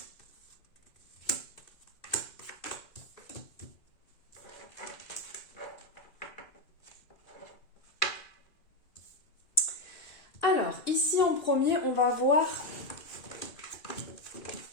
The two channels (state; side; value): late; right; 2.4 ms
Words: Alors, ici en premier, on va voir...